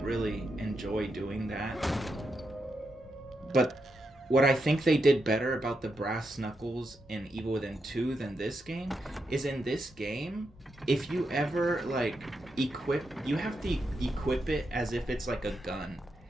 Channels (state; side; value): normal; both; correlation 0.84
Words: really enjoy doing that. But what I think they did better about the brass knuckles in Evil Within 2 than this game is, in this game, if you ever like you have to equip it as if it's like a gun.